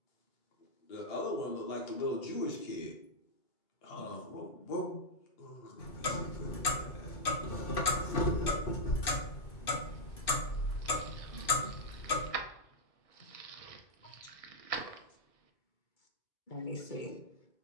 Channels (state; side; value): late; right; 2.6 ms